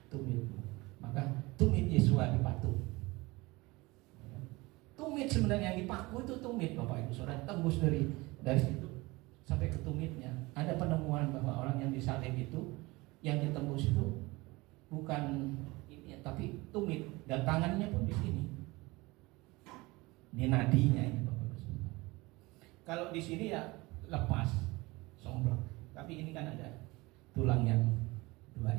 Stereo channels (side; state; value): left; quieter; 22.5 dB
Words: tumitmu. Maka tumit Yesua dipatuk. Tumit sebenarnya yang dipaku itu tumit, Bapak Ibu Saudara, tembus dari situ sampai ke tumitnya. Ada penemuan bahwa orang yang disalib itu, yang ditembus itu bukan ini, tapi tumit, dan tangannya pun di sini, di nadinya ini, Bapak Ibu Saudara. Kalau di sini ya lepas, somplak, tapi ini kan ada tulang yang dua